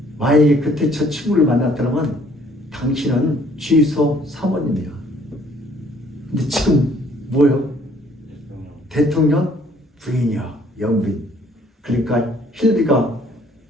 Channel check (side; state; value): both; normal; correlation 0.61